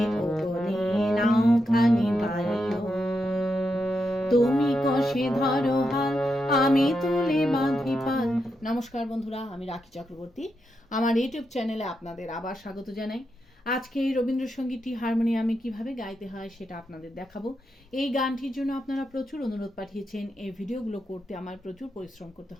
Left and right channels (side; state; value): both; normal; correlation 0.85